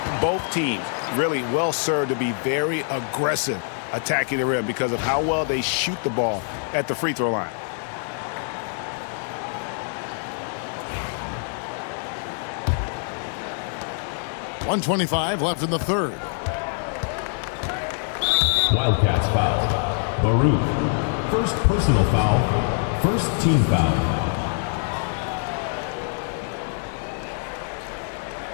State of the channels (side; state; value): right; silent; 60 dB below the other